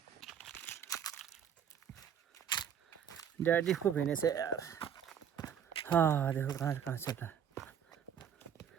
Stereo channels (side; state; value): left; quieter; 8.3 dB